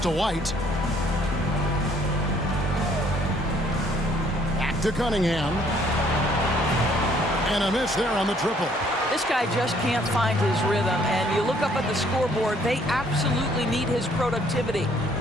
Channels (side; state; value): both; normal; correlation 0.63